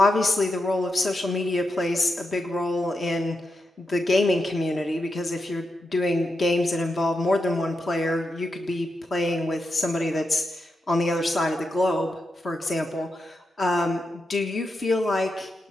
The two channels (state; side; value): normal; both; correlation 0.87